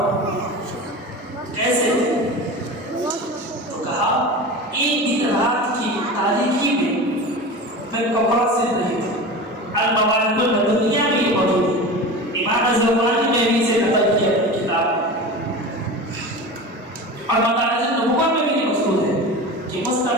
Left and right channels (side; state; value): both; normal; correlation 0.30